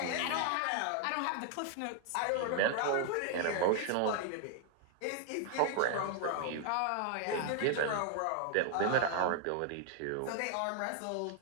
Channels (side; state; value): both; different; correlation 0.00